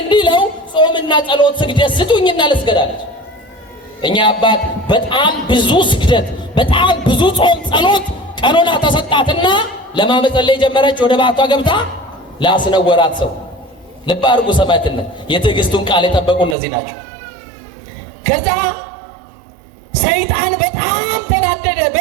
እንዲለው ጾምና ጸሎት ስግደት ስጡኝና ልስገዳለች። እኛ አባት በጣም ብዙ ስግደት፣ በጣም ብዙ ጾም ጸሎት ቀኖና ተሰጣትና ለማመጸለይ ጀመረች። ወደ ባቷ ገብታ ላስነወራት ሰው ልብ አድርጉ። ሰማዕትነት የትዕግስቱን ቃል የጠበቁ እነዚህ ናቸው። ከዛ ሰይጣን በጣም ተናደደ፣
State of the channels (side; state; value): left; drops out; at 16.6 s